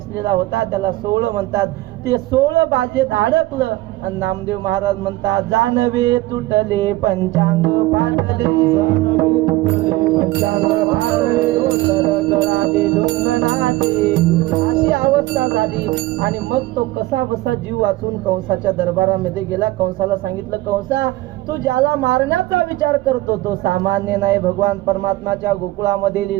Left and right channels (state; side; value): quieter; left; 18.4 dB